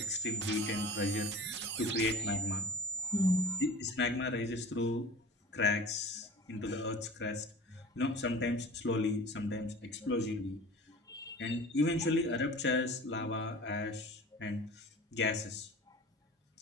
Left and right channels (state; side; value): normal; both; correlation 0.39